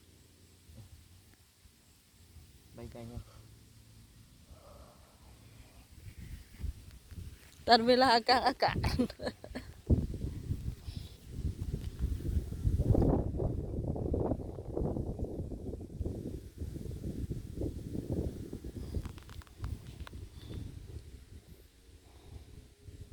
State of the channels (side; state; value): both; identical; correlation 1.00